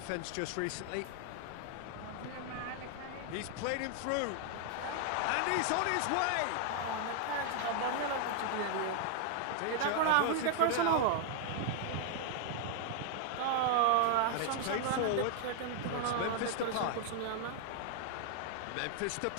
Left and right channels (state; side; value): different; both; correlation 0.00